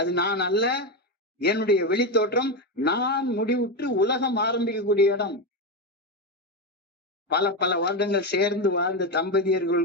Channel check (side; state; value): both; normal; correlation 0.12